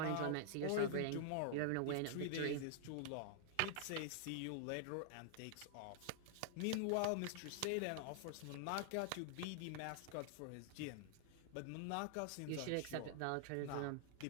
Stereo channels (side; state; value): both; different; correlation -0.01